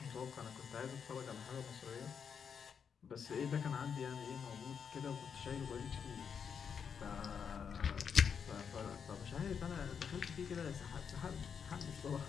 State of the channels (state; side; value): quieter; right; 6.9 dB